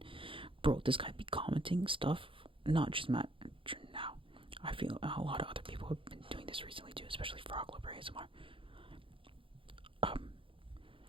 Bro, this guy be commenting stuff, not just Matron now. I feel a lot of other people have been doing this recently too, especially Frog Lover ASMR.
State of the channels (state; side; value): late; left; 0.25 ms